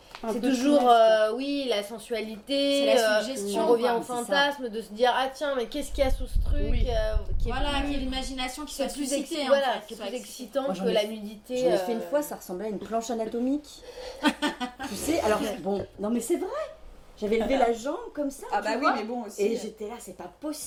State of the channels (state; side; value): identical; both; correlation 1.00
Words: Un c'est peu de toujours, finesse. oui, la sensualité, C'est la suggestion, on revient quoi, au c'est ça. fantasme de se dire, ah tiens, mais qu'est-ce qu'il y a sous ce truc Oui. qui est Voilà, plus- qu'il y ait l'imagination qui c'est soit plus suscitée. voilà, en fait, qui est soit plus excitée. excitant Moi, j'en que ai- la nudité. J'en ai fait une fois, ça ressemblait à une planche anatomique. Tu sais, alors bon, non mais c'est vrai. J'avais levé la jambe comme ça. Ah tu bah oui, vois. mais bon aussi. Et j'étais là, c'est pas